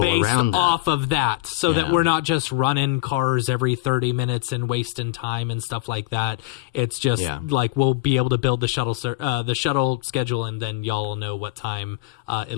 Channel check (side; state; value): right; quieter; 19.4 dB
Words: around that. off of that, so that Yeah. we're not just running cars every 30 minutes and wasting time and stuff like that. It's just like we'll be able to build the shuttle schedule, and then y'all will know what time